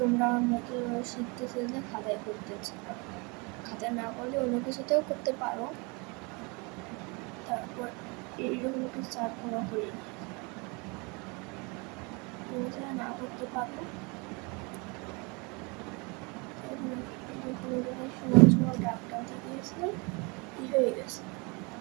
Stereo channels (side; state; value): left; quieter; 29.7 dB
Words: আমার মতো শিখতে চাইলে খাতায় করতে পারো, খাতায় না করলে অন্য কিছুতেও করতে পারো। তারপর এইরকম একটু চারকোনা করে তুমি যারা না করতে পারো সমান সমান দাগ টানতে গিয়েছিলাম, কি হয়ে গেছে,